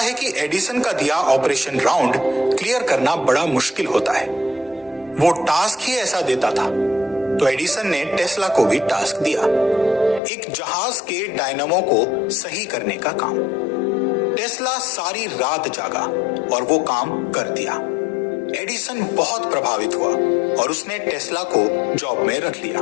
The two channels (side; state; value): right; drops out; at 10.2 s